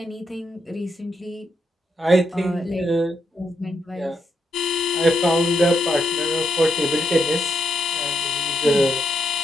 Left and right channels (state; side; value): normal; both; correlation 0.80